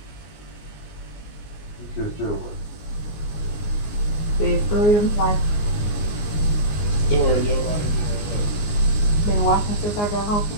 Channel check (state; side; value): late; right; 19 ms